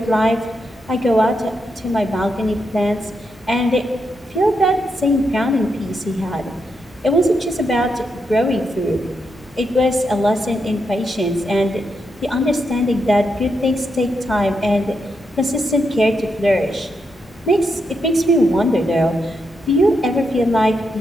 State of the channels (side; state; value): both; normal; correlation 0.83